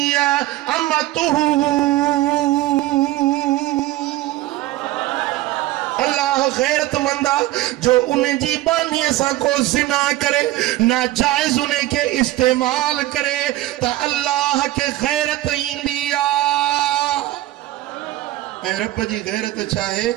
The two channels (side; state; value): left; quieter; 16.4 dB